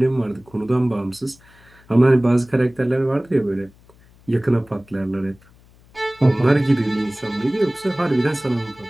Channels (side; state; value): left; noise; hum, 28 dB below the sound